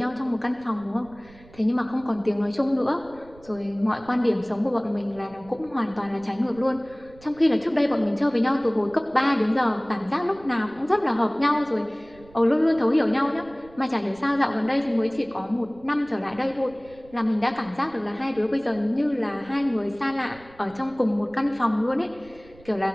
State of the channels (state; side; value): noise; right; rumble, 24 dB below the sound